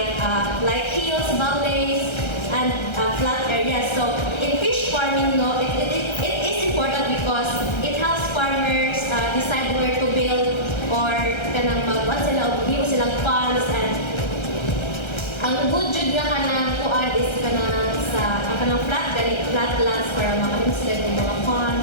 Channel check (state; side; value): late; right; 1.3 ms